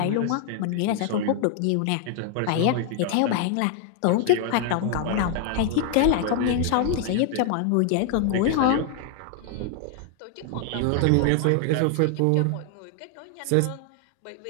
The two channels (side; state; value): both; different; correlation 0.00